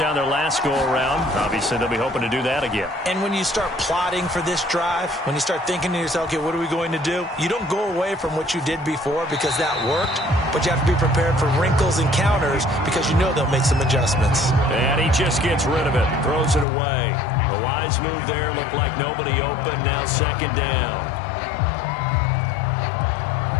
their last go-around. Obviously, they'll be hoping to do that again. And when you start plotting for this drive, when you start thinking to yourself, okay, what are we going to do? You don't go away from what you did before because that worked, but you have to be prepared for wrinkles and counters because you know they'll make some adjustments. And he just gets rid of it, throws it away. A wise move there, looked like nobody open, now second down.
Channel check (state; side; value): drops out; right; at 16.7 s